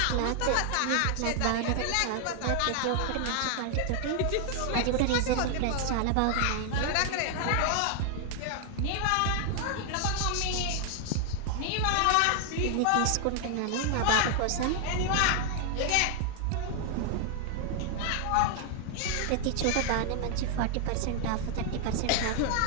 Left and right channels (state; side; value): different; both; correlation 0.00